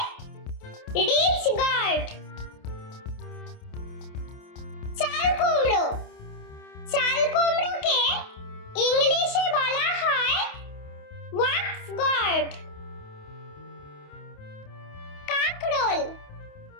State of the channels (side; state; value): right; late; 28 ms